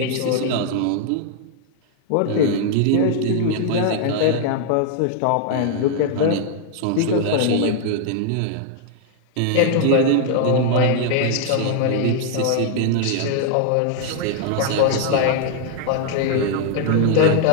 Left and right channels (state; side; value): different; both; correlation 0.00